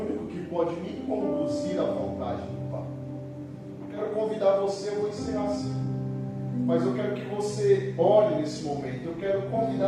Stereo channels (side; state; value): both; identical; correlation 1.00